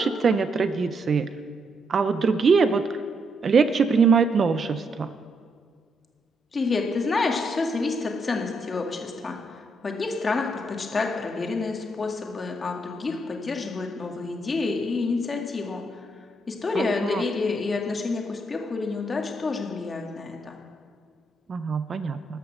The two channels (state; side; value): normal; both; correlation 0.77